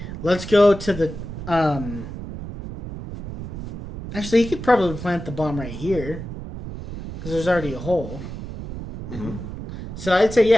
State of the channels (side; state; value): right; noise; rumble, 9 dB below the sound